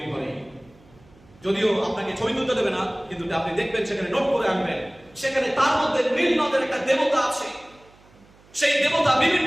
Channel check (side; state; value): right; noise; hum, 28 dB below the sound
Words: ঘরে। যদিও আপনাকে ছবি তুলতে দেবে না, কিন্তু আপনি দেখবেন সেখানে নোট করে আনবেন, সেখানে তার মধ্যে নীল নদের একটা দেবতা আছে। সেই দেবতা